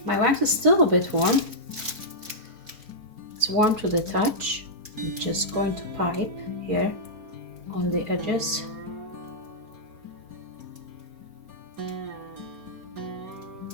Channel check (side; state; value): left; late; 4.4 ms